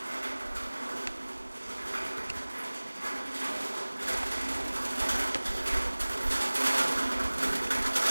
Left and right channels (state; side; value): inverted; both; correlation -1.00